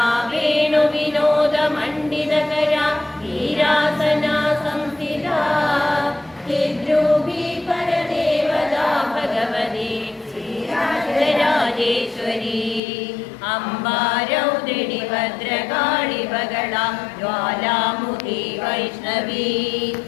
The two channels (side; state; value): right; drops out; at 12.8 s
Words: वेणुविनोदमण्डितकरा वीरासना संस्थिता चिद्रूपी परदेवता भगवती श्रीराजराजेश्वरी अम्बा रौद्रिणी भद्रकाळि बगला ज्वालामुखी वैष्णवी